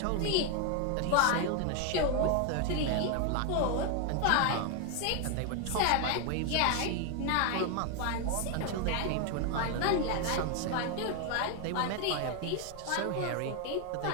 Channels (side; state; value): both; different; correlation 0.01